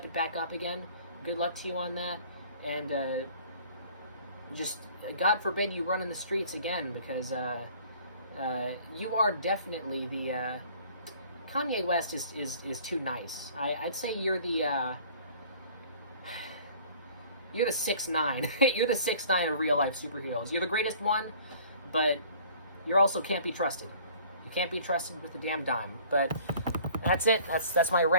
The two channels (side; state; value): both; inverted; correlation -0.51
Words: it back up again. Good luck to you on that. And just, God forbid you run in the streets again, because you are definitely the... Kanye West is too nice. I'd say you're the... you're the 6'9". You're the 6'9" of real-life superheroes. You're the greatest one, but you also can't be trusted. You can't be trusted with a damn dime. But that's it. That's my